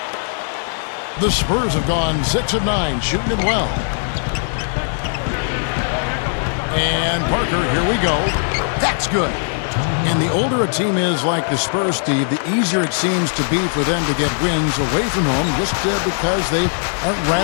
The Spurs have gone 6 of 9, shooting it well. And Parker, here we go. That's good. And the older a team is like the Spurs, Steve, the easier it seems to be for them to get wins away from home just because they aren't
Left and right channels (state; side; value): silent; right; digital silence